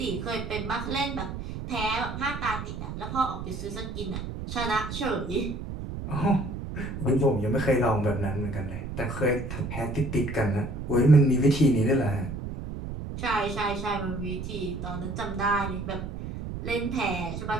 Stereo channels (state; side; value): noise; right; rumble, 7 dB below the sound